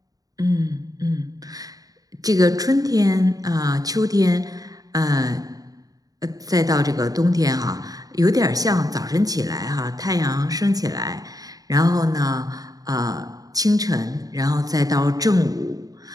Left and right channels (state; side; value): late; left; 0.18 ms